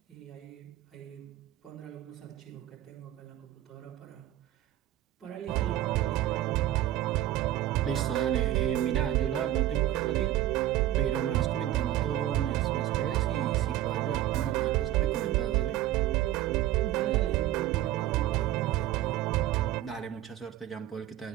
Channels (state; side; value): quieter; left; 13.6 dB